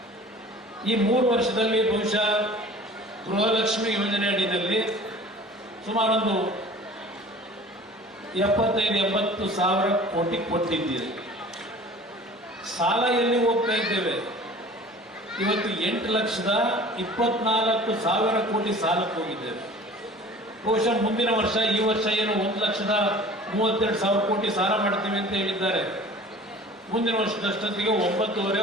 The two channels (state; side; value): normal; both; correlation 0.44